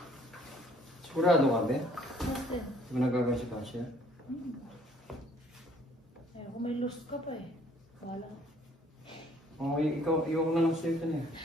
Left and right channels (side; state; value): both; normal; correlation 0.60